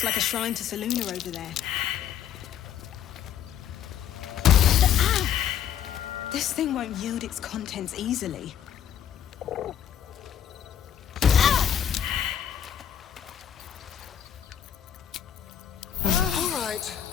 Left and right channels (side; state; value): right; quieter; 9.6 dB